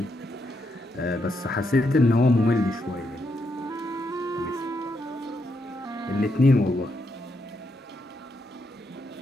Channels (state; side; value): normal; both; correlation 0.80